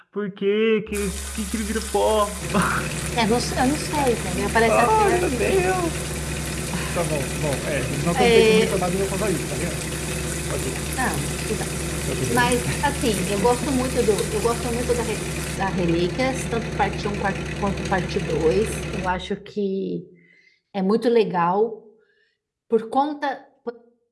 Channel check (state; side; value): identical; both; correlation 1.00